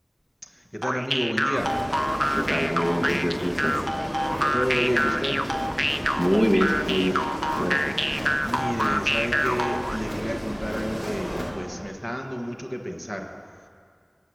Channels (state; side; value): identical; both; correlation 1.00